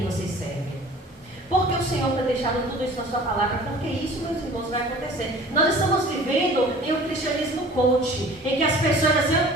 vocês servem. Porque o Senhor tem deixado tudo isso na sua palavra, porque isso, meus irmãos, vai acontecer. Nós estamos vivendo em um cristianismo coach, em que as pessoas dizem,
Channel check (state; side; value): normal; both; correlation 0.46